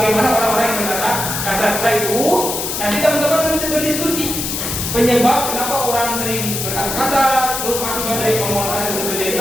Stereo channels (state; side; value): noise; left; hiss, 3 dB below the sound